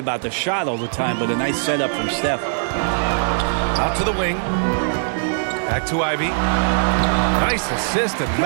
the shot all the time, but a nice setup from Steph. Out to the wing. Back to Ivy. Nice assist and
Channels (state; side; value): silent; left; digital silence